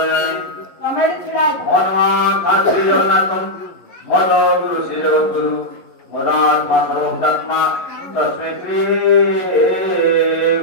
ହনুମାନ ଶ୍ରୀ ଜଗନ୍ନାଥ ମଦ ଗୁରୁ ଶ୍ରୀ ଜଗଦ୍ଗୁରୁ ମଦାତ୍ମା ସର୍ବଭୂତାତ୍ମା ତସ୍ମୈ ଶ୍ରୀ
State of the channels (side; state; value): right; late; 11 ms